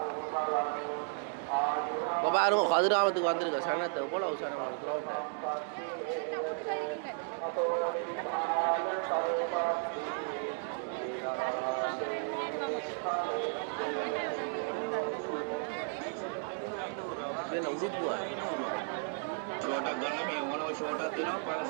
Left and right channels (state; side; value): silent; left; 55 dB below the other